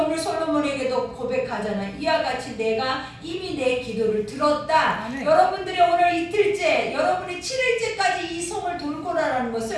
솔로몬에게도 고백하잖아요. 이와 같이 내가 이미 내 기도를 들었다. 여러분들이 오늘 이틀째, 여러분이 7일째까지 이 성을 돌고라라는 것을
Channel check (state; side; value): identical; both; correlation 1.00